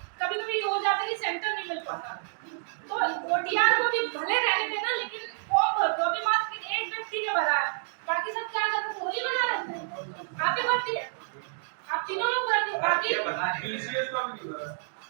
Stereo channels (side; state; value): left; silent; digital silence